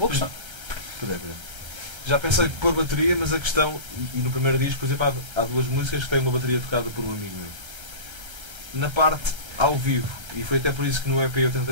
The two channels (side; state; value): left; late; 1.3 ms